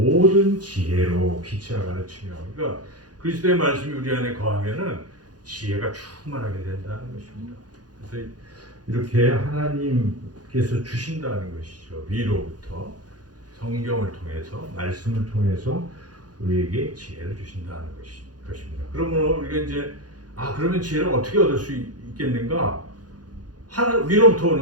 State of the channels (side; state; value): left; late; 0.69 ms